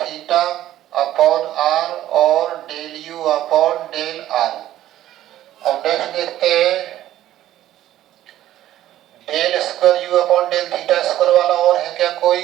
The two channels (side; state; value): left; quieter; 13.3 dB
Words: upon r और del u upon del r. अब नेक्स्ट देखते हैं del square u upon del theta square वाला और है क्या कोई?